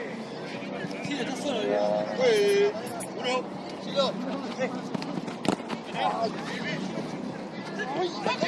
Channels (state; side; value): identical; both; correlation 1.00